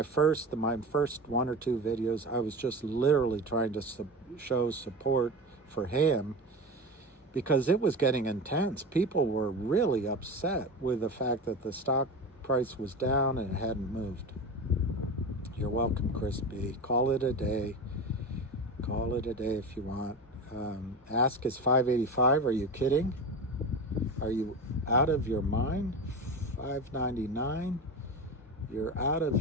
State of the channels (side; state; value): both; normal; correlation 0.26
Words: first 1 or 2 videos, I was just literally trying to show support for him, because it was getting intense. People were really upset with the fact that the stock price was down and it hadn't moved. You're welcome, Chris B. Call it a day. Call it a day if you want. Ask is 585. Are you kidding? Are you out of your mind? 599. You're out